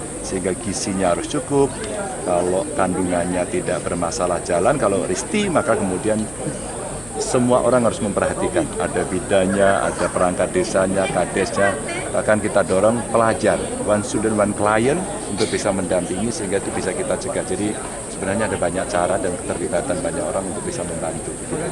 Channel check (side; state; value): left; noise; hum, 19 dB below the sound